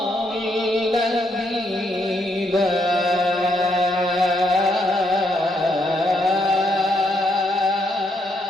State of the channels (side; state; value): both; normal; correlation 0.75